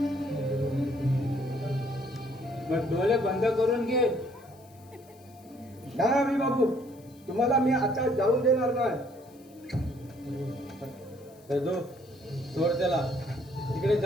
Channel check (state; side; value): noise; left; hiss, 28 dB below the sound